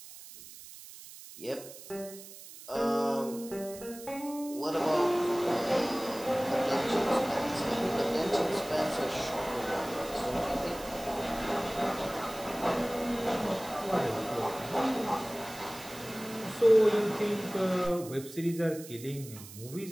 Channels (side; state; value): right; noise; hiss, 15 dB below the sound